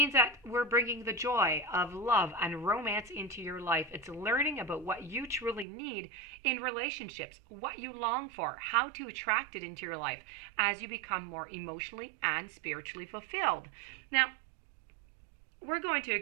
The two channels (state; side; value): drops out; left; at 5.7 s